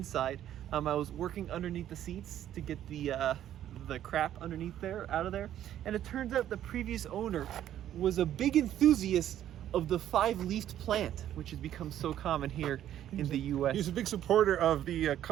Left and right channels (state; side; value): quieter; left; 11.4 dB